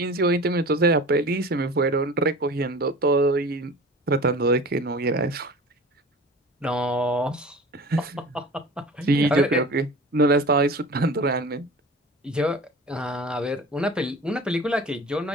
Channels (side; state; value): both; normal; correlation 0.39